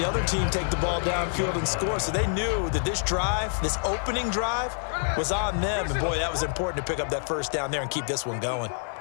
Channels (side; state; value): right; silent; 60 dB below the other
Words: other team take the ball downfield and score, so they knew that this drive, this opening drive, was on them. And, boy, that was important to pick up that first down there and keep this one going.